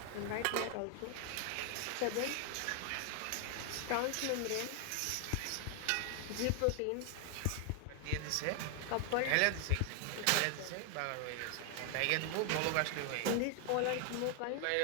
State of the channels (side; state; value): both; different; correlation 0.00